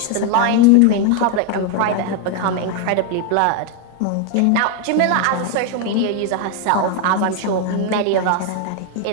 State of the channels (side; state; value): both; different; correlation 0.01